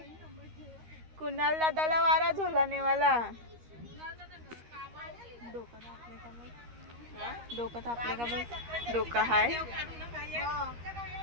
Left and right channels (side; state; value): left; late; 13 ms